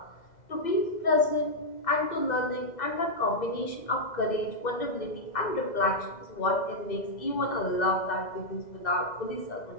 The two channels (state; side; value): late; right; 2.0 ms